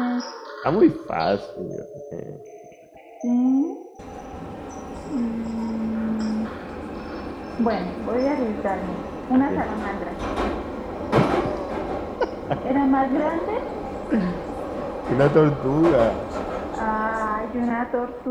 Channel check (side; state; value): both; identical; correlation 1.00